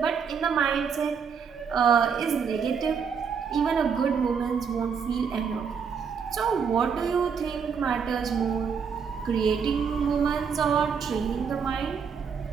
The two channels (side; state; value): left; quieter; 6.4 dB